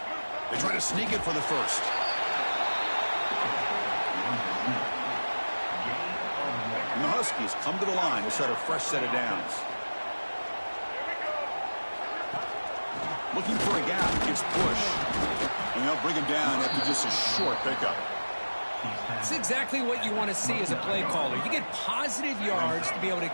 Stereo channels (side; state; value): both; inverted; correlation -1.00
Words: They try to sneak it for the first. And the Huskies come to the line to set a fresh set of downs. Looking for a gap, gets pushed. And they'll bring him down after just a short pickup. It's exactly what you want to see as a play caller. You get positive yards to be able to